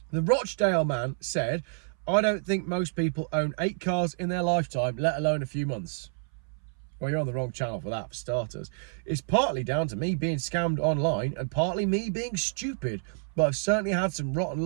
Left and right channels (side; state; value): left; silent; 59 dB below the other